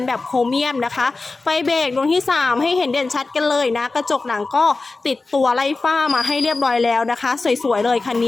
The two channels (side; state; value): right; quieter; 3.6 dB